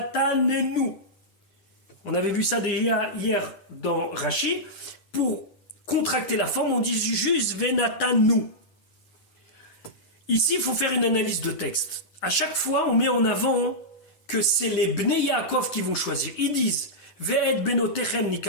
On avait vu ça déjà hier dans Rashi. Pour contracter la forme, on dit juste venatanu. Ici, il faut faire une analyse de texte. à chaque fois, on met en avant que c'est les Bnei Yaakov qui vont choisir. Ils disent, Ve'et benotechem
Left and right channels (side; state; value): right; late; 10 ms